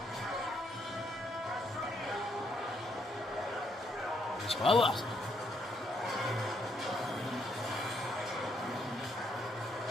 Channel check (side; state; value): both; normal; correlation 0.74